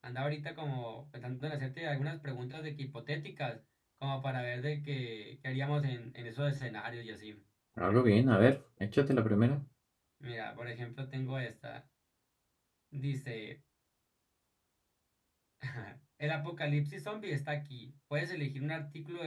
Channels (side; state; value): both; identical; correlation 1.00